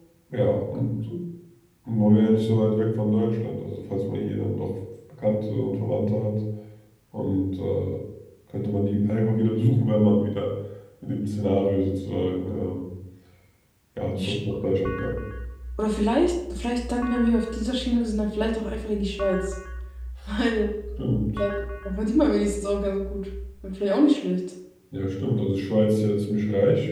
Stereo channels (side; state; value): both; identical; correlation 1.00